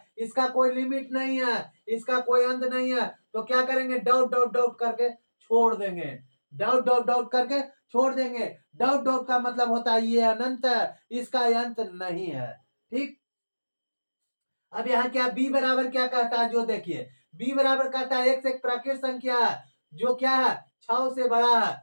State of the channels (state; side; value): inverted; both; correlation -1.00